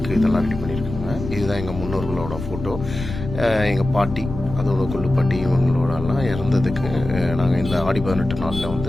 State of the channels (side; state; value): left; noise; rumble, 9 dB below the sound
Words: இதெல்லாம் ரெடி பண்ணியிருக்காங்க. இதுதான் எங்கள் முன்னோர்களோட ஃபோட்டோ. எங்கள் பாட்டி, அதோட கொள்ளுப்பாட்டி, இவங்களோடலாம் இறந்ததுக்கு நாங்கள் இந்த ஆடி 18 நாளில்